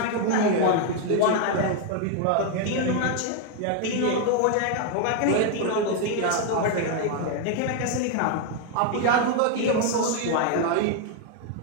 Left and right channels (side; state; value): both; different; correlation 0.01